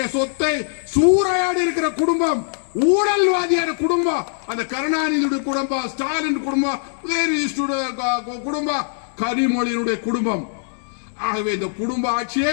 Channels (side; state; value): right; silent; digital silence